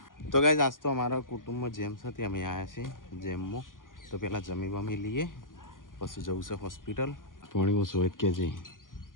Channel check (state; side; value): late; right; 0.89 ms